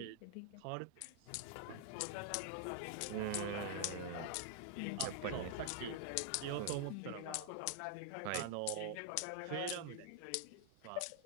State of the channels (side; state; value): both; different; correlation 0.00